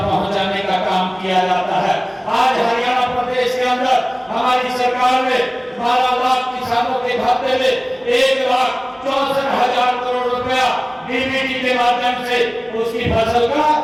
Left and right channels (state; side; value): identical; both; correlation 1.00